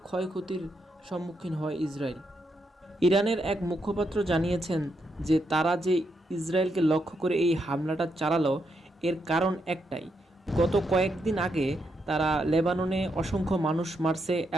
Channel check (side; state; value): both; normal; correlation 0.81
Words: ক্ষয়ক্ষতির সম্মুখীন হয় ইসরায়েল। ইরানের এক মুখপাত্র জানিয়েছেন যে তারা যে ইসরায়েলকে লক্ষ্য করে এই হামলাটা চালালো এর কারণ একটাই, গত কয়েকদিন আগে তারা লেবাননে অসংখ্য মানুষ মারছে